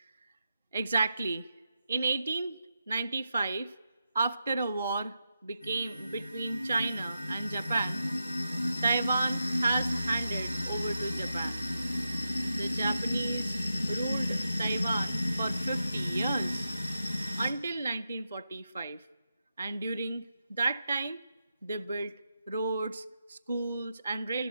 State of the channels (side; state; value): both; inverted; correlation -0.88